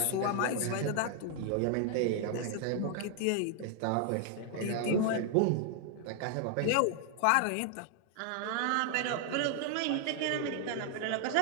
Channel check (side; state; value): both; different; correlation 0.00